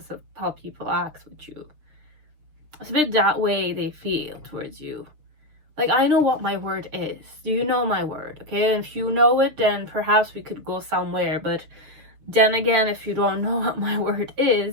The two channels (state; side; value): late; left; 6.6 ms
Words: of how people act with you. It's a bit that way they feel towards you. Like, I know what my word is. Do you know my word? Okay, and if you know it, then perhaps we could go somewhere. But then again, if you don't know what my word